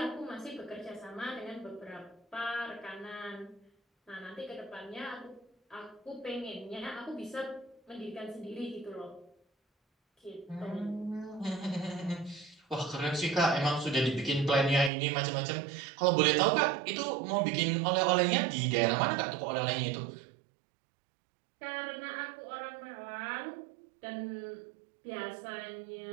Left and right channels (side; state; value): left; drops out; at 14.9 s